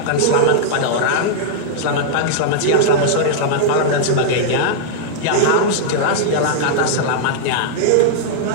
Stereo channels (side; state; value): both; different; correlation -0.01